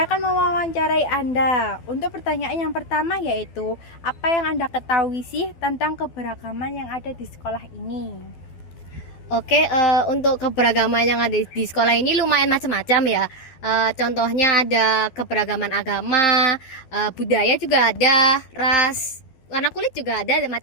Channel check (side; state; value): right; late; 12 ms